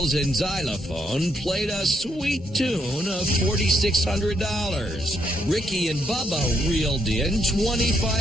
and xylophone played a sweet tune of $4,600. Ricky and Bubba reeled in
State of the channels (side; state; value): both; normal; correlation 0.76